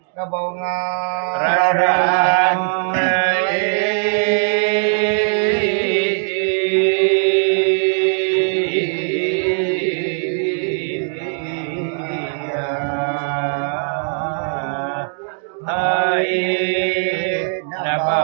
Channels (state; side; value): silent; left; digital silence